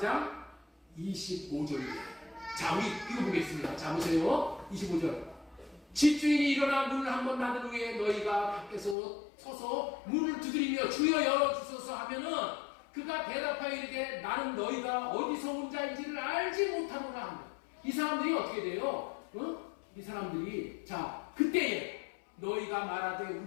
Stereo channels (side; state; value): right; drops out; at 9.0 s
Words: 25절입니다. 자, 우리 이거 보겠습니다. 자, 보세요. 25절. 집주인이 일어나 문을 한번 닫은 후에 너희가 밖에서 서서 문을 두드리며 주여 열어주소서 하면은 그가 대답하여 이르되 나는 너희가 어디서 온 자인지를 알지 못하노라 합니다. 이 사람들이 어떻게 돼요? 이 사람들이 자 그때에 너희가 말하되